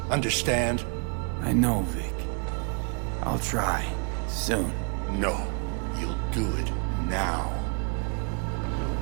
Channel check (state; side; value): quieter; left; 38.1 dB